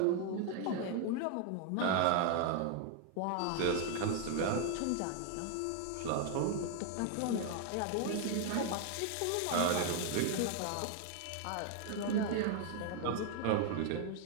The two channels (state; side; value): different; both; correlation 0.00